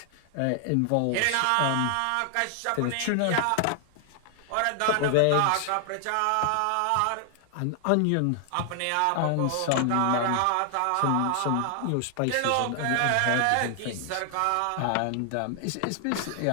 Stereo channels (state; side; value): different; both; correlation 0.00